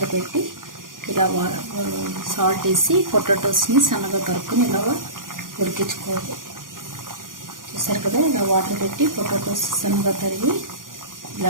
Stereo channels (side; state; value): left; late; 0.90 ms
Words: పెట్టి ఇలా సాల్ట్ వేసి పొటాటోస్ని సన్నగా తరుక్కుని ఇలాగా ఉడికించుకోవాలి. చూసారు కదా, ఇలా వాటర్ పెట్టి పొటాటోస్ సన్నగా తరిగి